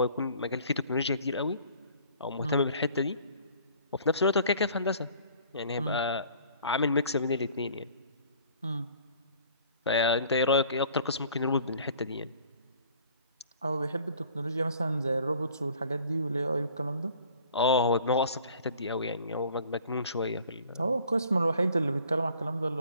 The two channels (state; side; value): inverted; both; correlation -0.52